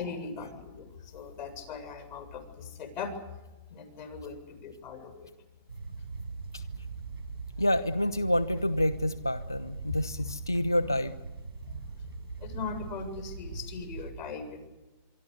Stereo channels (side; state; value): both; inverted; correlation -0.84